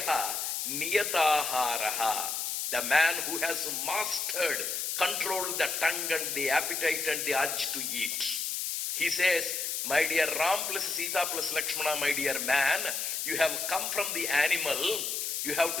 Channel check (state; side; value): noise; left; hiss, 2 dB below the sound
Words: Niyataharaha. The man who has mastered, controlled the tongue and the appetite and the urge to eat. He says, my dear Ram plus Sita plus Lakshmana, my dear man, you have come from the animal, you have